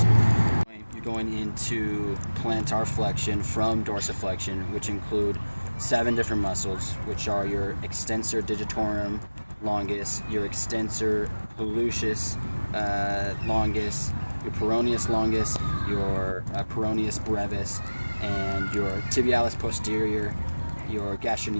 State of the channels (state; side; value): inverted; both; correlation -1.00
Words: You're going into plantar flexion from dorsiflexion, which include 7 different muscles, which are your extensor digitorum longus, your extensor hallucis longus, your peroneus longus, your peroneus brevis, and your tibialis posterior, your